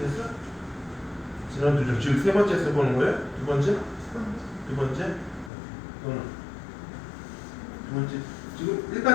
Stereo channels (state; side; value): drops out; right; at 5.5 s